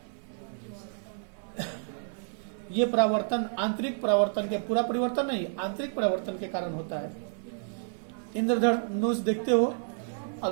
ये परावर्तन आंतरिक परावर्तन के, पूरा परिवर्तन नहीं, आंतरिक परावर्तन के कारण होता है। इंद्रधनुष देखते हो,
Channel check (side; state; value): left; silent; 58 dB below the other